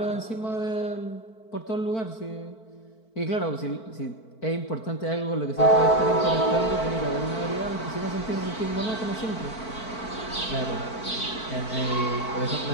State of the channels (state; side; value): late; right; 4.5 ms